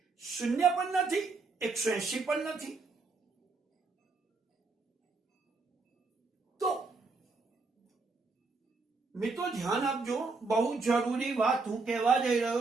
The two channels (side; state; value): left; quieter; 4.0 dB